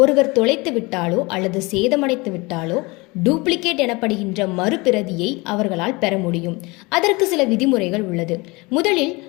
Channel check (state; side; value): quieter; right; 25.0 dB